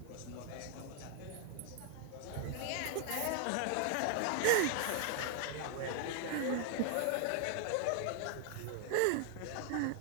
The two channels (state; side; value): different; both; correlation 0.00